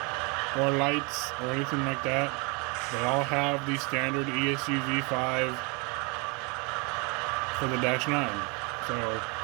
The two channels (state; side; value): quieter; left; 31.0 dB